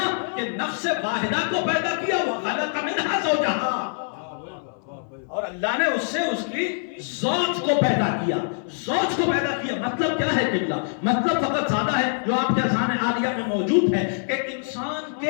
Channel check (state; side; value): silent; right; 62 dB below the other